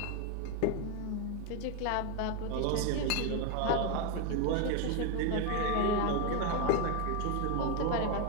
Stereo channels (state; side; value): different; both; correlation 0.02